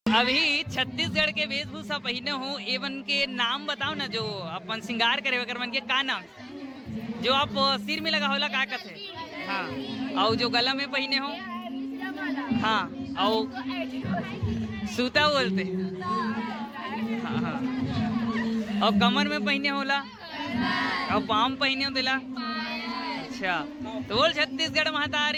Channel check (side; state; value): both; identical; correlation 1.00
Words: अभी छत्तीसगढ़ के वेशभूषा पहने हो, एवन के नाम बताओ ना, जो अपन श्रृंगार करे वगैरह मन के का नाम, जो आप सिर में लगा होला का कहते, हाँ, और जो गला में पहने हो, हाँ, और सूता बोलते, हाँ हाँ, और कमर में पहने होला, और पाम पहने हो दिला। अच्छा, तो बोल छत्तीसगढ़